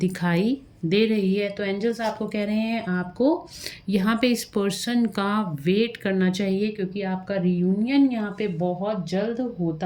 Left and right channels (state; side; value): identical; both; correlation 1.00